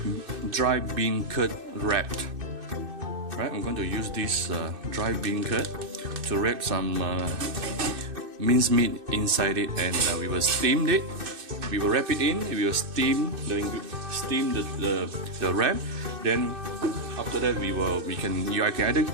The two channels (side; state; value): left; late; 2.6 ms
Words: dry bean curd wrapped. Right, I'm going to use this dry bean curd to wrap some minced meat inside it, and we will steam it. We will wrap it in. We will steam the wrap. Then after that, I can either